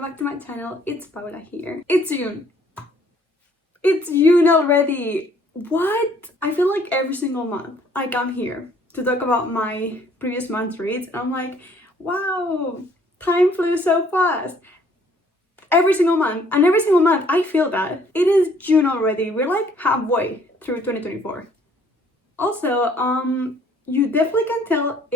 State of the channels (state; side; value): normal; both; correlation 0.61